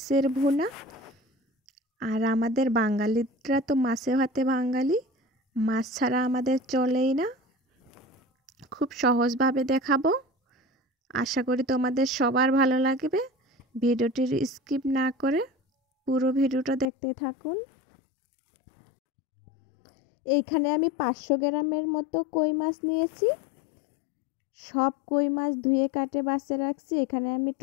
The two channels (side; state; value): right; drops out; at 16.9 s